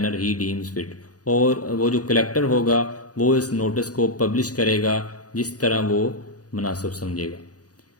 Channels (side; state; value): right; late; 0.68 ms